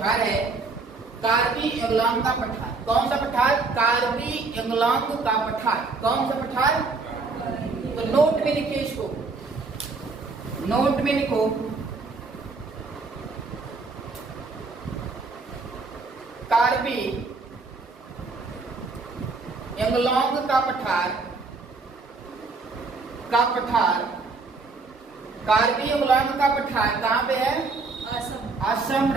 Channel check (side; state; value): left; quieter; 4.0 dB